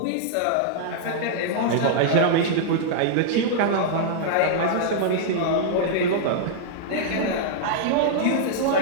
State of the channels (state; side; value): different; both; correlation -0.02